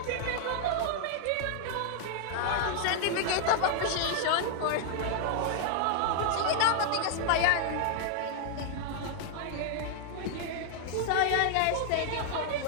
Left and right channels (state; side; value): different; both; correlation 0.00